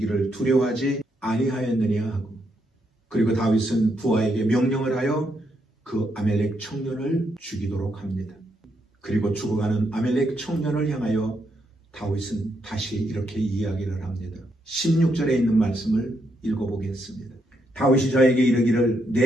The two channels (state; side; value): normal; both; correlation 0.78